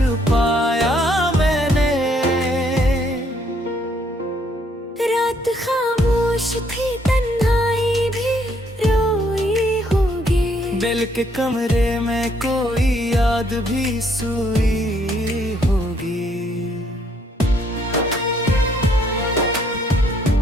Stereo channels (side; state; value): both; normal; correlation 0.68